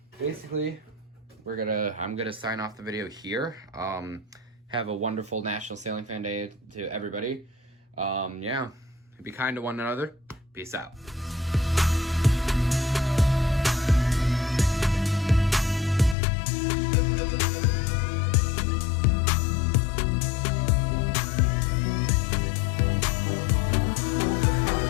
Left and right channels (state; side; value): drops out; right; at 16.2 s